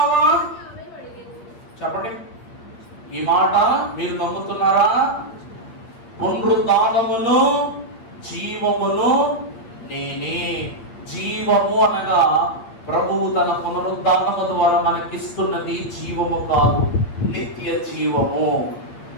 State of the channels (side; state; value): right; late; 8.6 ms